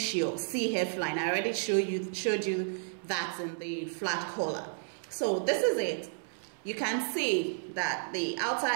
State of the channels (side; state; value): left; silent; 56 dB below the other